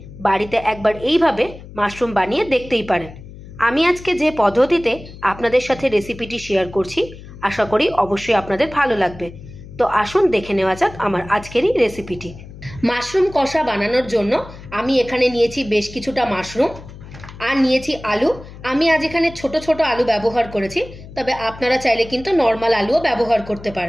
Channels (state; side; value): noise; left; hum, 16 dB below the sound